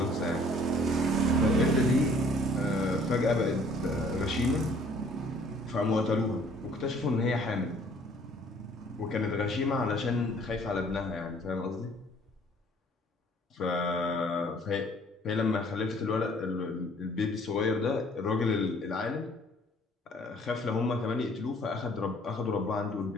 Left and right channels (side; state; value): both; normal; correlation 0.57